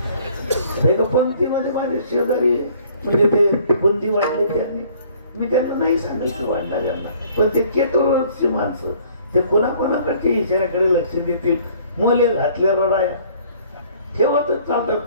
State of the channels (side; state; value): both; inverted; correlation -0.57